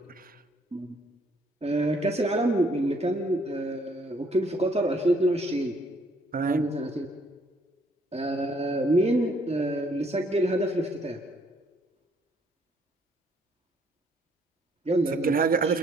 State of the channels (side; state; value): both; normal; correlation 0.66